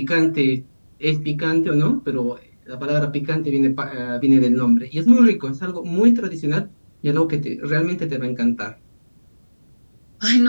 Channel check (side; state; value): both; inverted; correlation -1.00